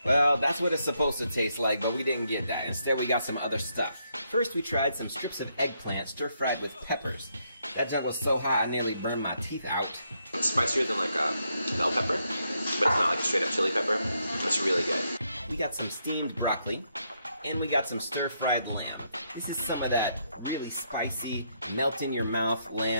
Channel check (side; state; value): both; inverted; correlation -0.77